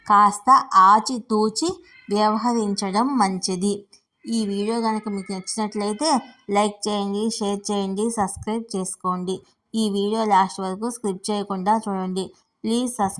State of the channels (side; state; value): both; identical; correlation 1.00